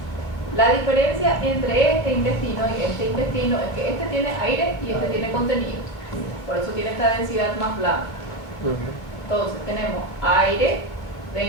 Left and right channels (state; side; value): late; right; 2.3 ms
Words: La diferencia entre este intestino y este intestino es que este tiene aire y este tiene contenido. Por eso tiene esta densidad más blanca. Entonces, tenemos aire